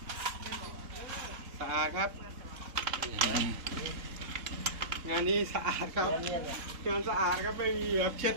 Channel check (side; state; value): left; late; 3.8 ms